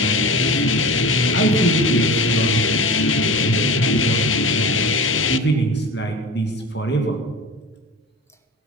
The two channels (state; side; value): normal; both; correlation 0.34